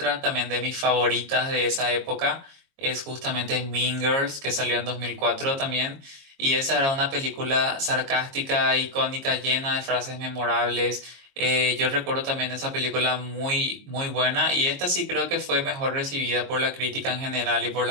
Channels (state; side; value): late; left; 22 ms